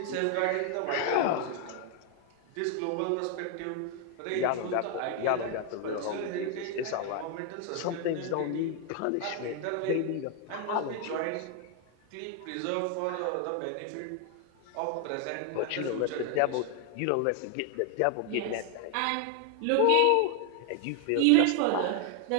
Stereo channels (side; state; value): both; different; correlation 0.01